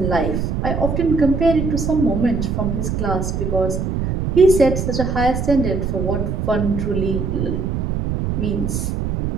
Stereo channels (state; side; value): noise; right; rumble, 1 dB below the sound